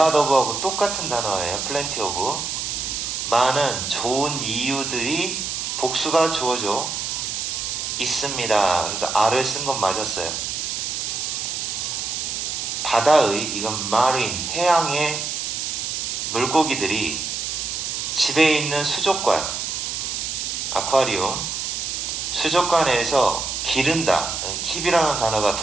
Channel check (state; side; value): noise; right; hiss, 3 dB below the sound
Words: of하고 똑같은 단어예요. plenty of. 많은 좋은 이유들이 복수가 주어져 있습니다. 그래서 R을 쓴 건 맞았어요. 바다의, 이건 marine, 해양의 물고기들이 집에 있는 수족관, 아쿠아리움, 수족관에서 기른다. 킵이라는 단어가